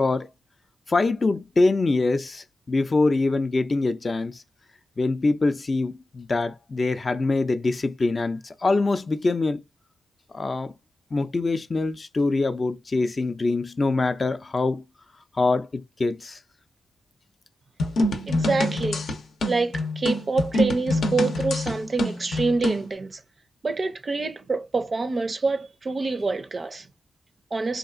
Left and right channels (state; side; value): normal; both; correlation 0.91